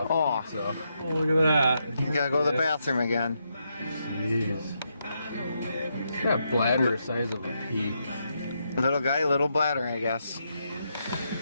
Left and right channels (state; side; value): inverted; both; correlation -0.81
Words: Oh, so. Oh, look at that. You gotta go to the bathroom again. Jeez. That bladder the size of a pea. Little guy, little bladder, I guess.